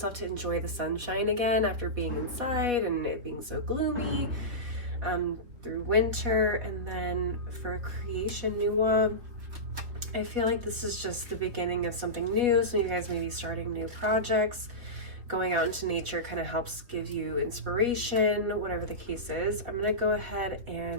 to enjoy the sunshine again after being inside and it being so gloomy through winter. And then for creation, Nuwa, I feel like this is just the beginning of something new. Some of you guys may be starting new projects. Going out into nature kind of helps give you inspiration, whatever the case is. I'm going to go ahead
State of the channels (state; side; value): late; left; 3.9 ms